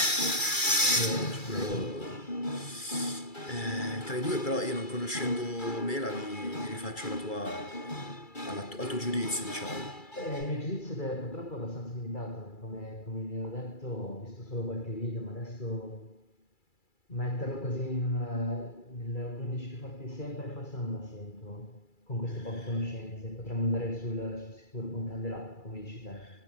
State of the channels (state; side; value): late; right; 2.3 ms